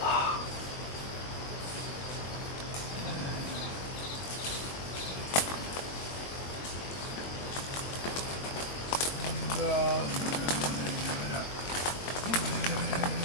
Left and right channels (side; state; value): right; late; 22 ms